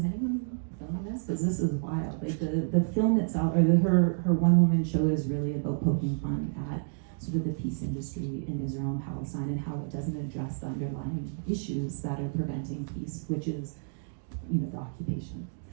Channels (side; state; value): left; silent; digital silence